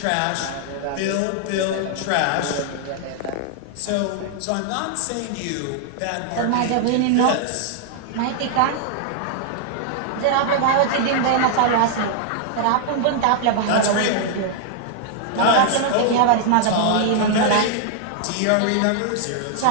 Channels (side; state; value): both; different; correlation -0.01